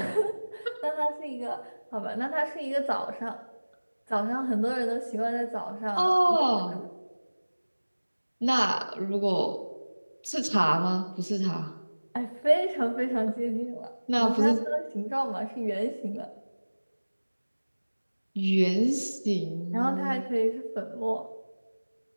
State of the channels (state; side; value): inverted; both; correlation -1.00